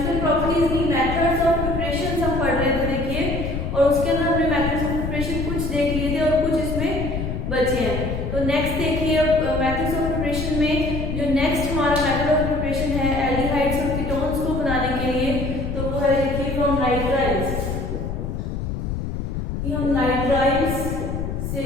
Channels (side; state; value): left; noise; rumble, 3 dB below the sound